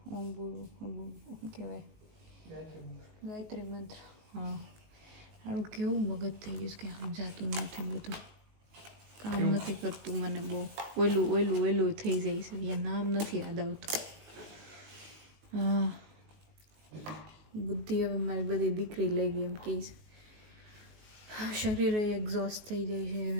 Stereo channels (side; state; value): left; late; 19 ms